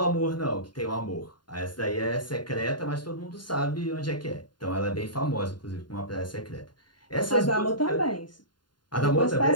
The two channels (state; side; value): late; right; 0.71 ms